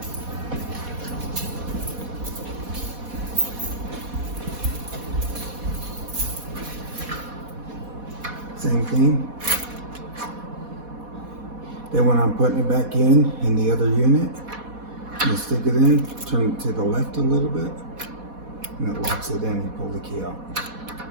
Same thing. Then when I'm putting it back in the other unit, you stick it in, turn it to the left a little bit, and it locks it in and pull the key out.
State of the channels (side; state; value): left; late; 4.1 ms